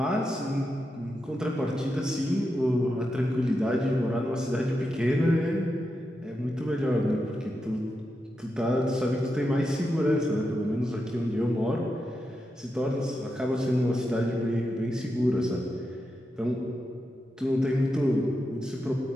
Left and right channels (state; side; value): normal; both; correlation 0.87